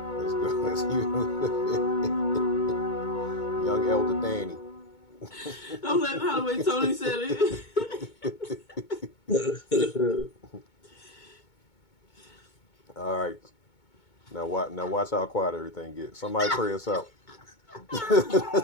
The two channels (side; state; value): right; late; 2.2 ms